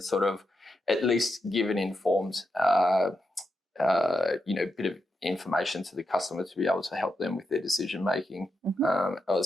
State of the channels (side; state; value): both; normal; correlation 0.85